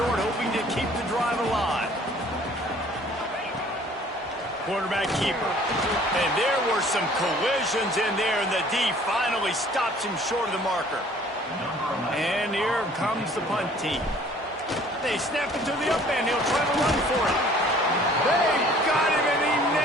hoping to keep the drive alive. Quarterback keeper. And there were some collisions in there, and the D finally stops him short of the marker. And here comes the punt team. They snap it to the up end. He'll try to run for it. They got him, and he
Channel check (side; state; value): both; normal; correlation 0.54